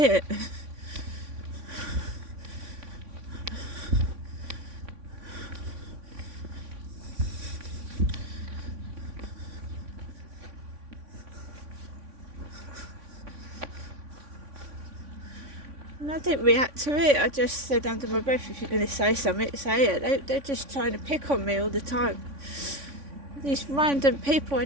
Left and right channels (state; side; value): late; left; 3.6 ms